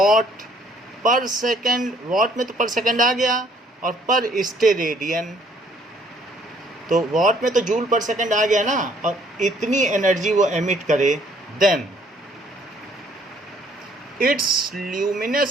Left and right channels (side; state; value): both; normal; correlation 0.63